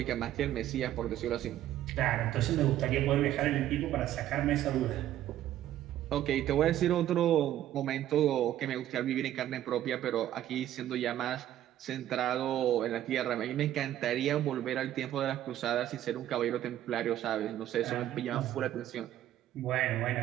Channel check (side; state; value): left; quieter; 12.5 dB